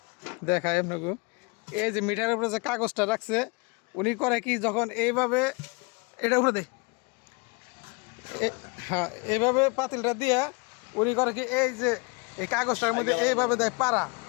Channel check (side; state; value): right; quieter; 29.7 dB